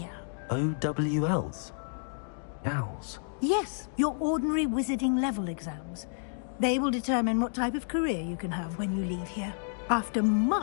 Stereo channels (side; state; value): right; silent; digital silence